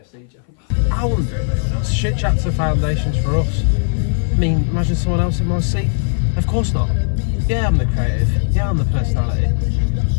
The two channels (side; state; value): right; silent; 57 dB below the other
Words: Joe? I wouldn't do it with anyone else. Shit chats are foundations for us. I mean, imagine someone else in my seat. Of course not. Yeah, I'm the creative. Yeah, I'm the personality.